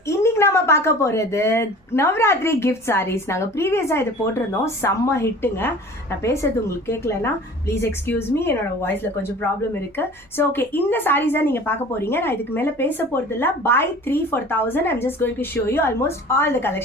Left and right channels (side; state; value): both; normal; correlation 0.43